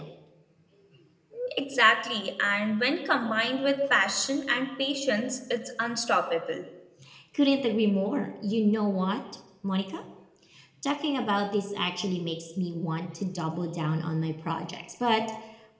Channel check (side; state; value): both; identical; correlation 1.00